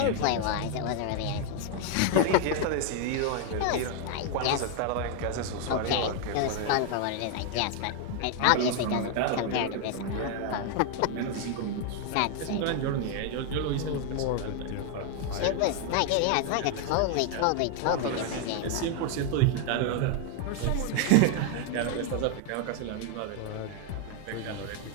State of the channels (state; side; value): different; both; correlation 0.00